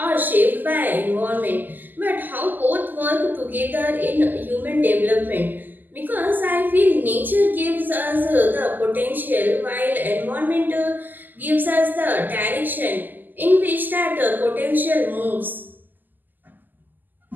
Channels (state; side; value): late; left; 0.091 ms